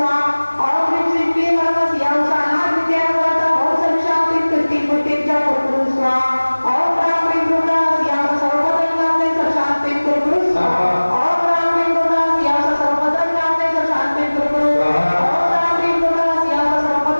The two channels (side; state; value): both; inverted; correlation -1.00